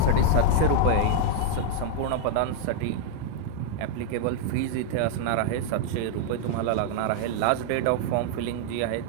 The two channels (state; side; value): different; both; correlation 0.00